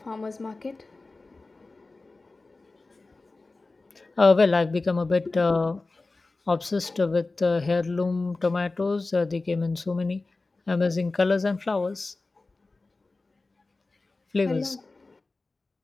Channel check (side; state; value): right; quieter; 3.4 dB